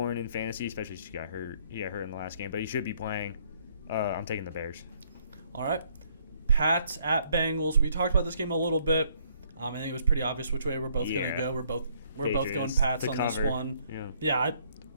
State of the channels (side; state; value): both; inverted; correlation -0.67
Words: in fantasy, especially since he got hurt. He got hurt in the last game, but he should be playing. I'm taking the Bears. All right. Pats at Bengals. We talked about this game a little bit. I think it was pretty obvious which way we're both going to go. We're both going Pats on this one. Yeah,